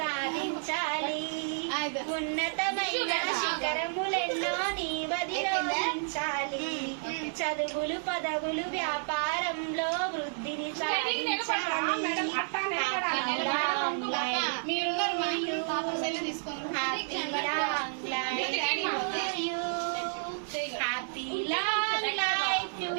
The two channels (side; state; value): left; silent; digital silence